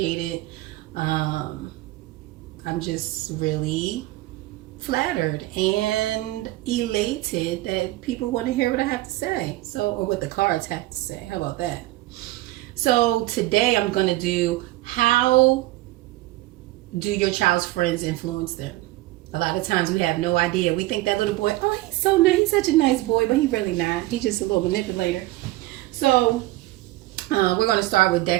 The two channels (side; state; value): left; quieter; 18.0 dB